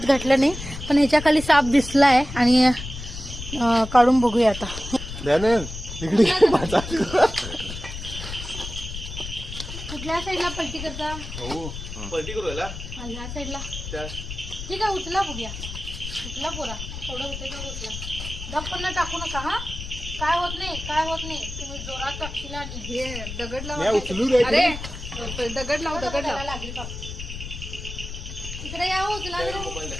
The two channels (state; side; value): noise; left; rumble, 9 dB below the sound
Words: नाही. पण ह्याच्या खाली साप दिसलाय आणि काढून बघूया आता. कुठल्या साईडला पलटी करता? पलटी करू याला ह्या साईडला. ठीक आहे, उचला बघूया. उचला पोरा, थोडं होते का उचला. दप्पन टाकू नका. हा, काय होत नाही, काय होत नाही. तुम्ही जोरात टाकशील आणि हे दगड लावा. अरे दगड लाव, दगड लाव. लागली का इकडे या, उचला.